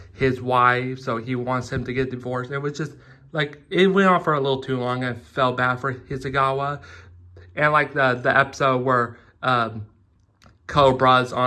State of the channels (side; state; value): both; identical; correlation 1.00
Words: his wife, so he wants him to get divorced. It was just like, it went on for a little too long. I felt bad for Hizugawa. And like the episode where Cobra's